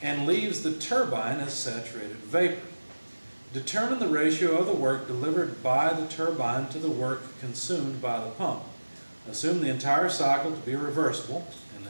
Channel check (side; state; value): both; inverted; correlation -1.00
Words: and leaves the turbine as saturated vapor. Determine the ratio of the work delivered by the turbine to the work consumed by the pump. Assume the entire cycle to be reversible and